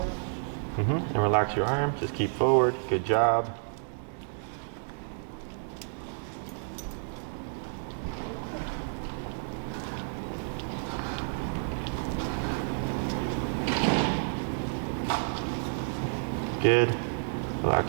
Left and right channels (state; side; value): silent; left; digital silence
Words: And relax your arm, just keep forward, good job. Good.